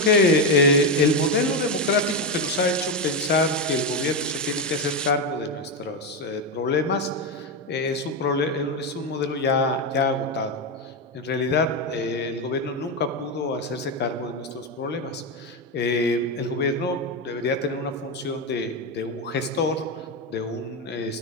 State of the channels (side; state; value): both; normal; correlation 0.09